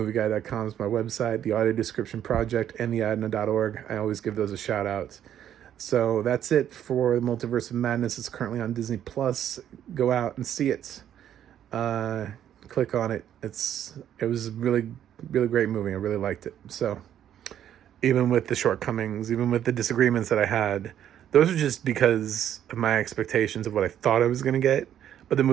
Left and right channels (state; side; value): quieter; left; 10.4 dB